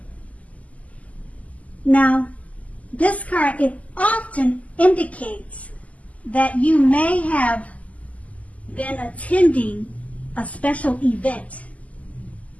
Now, this card, it often indicates that you may have been attending a special event.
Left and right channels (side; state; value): right; late; 0.072 ms